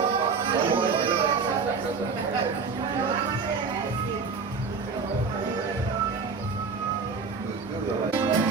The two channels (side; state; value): left; quieter; 4.9 dB